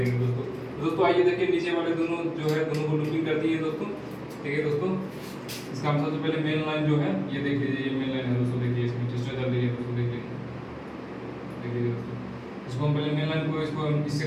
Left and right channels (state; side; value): identical; both; correlation 1.00